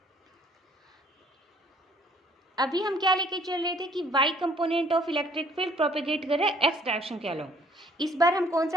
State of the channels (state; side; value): normal; both; correlation 0.59